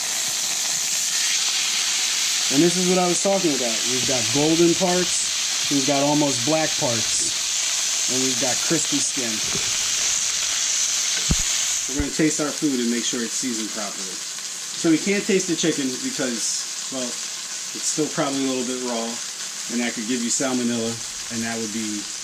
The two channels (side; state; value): both; identical; correlation 1.00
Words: And this is what I was talking about. We've got golden parts, we've got almost black parts, and we've got crispy skin. We're going to taste our food and make sure it's seasoned properly. So we can't taste the chicken because, well, it's still probably a little bit raw, and that could give you salmonella, and that would